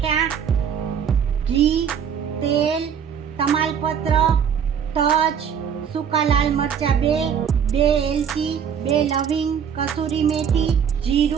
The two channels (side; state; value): left; quieter; 7.8 dB